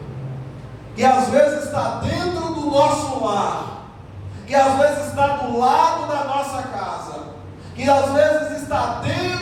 que às vezes está dentro do nosso lar, que às vezes está do lado da nossa casa, que às vezes está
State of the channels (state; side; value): identical; both; correlation 1.00